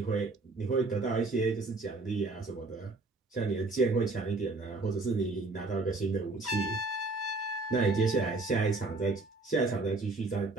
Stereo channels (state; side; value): quieter; left; 3.3 dB